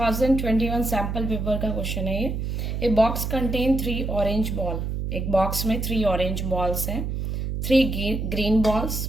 सैम्पल पेपर का क्वेश्चन है ये. A box contain 3 orange ball. एक बॉक्स में 3 ऑरेंज बॉल्स हैं, 3 green balls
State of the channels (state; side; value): noise; right; hum, 2 dB below the sound